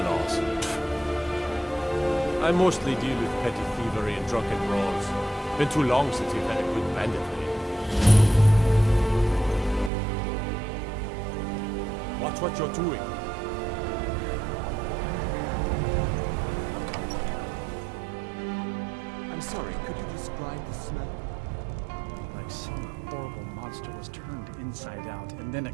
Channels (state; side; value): drops out; left; at 9.9 s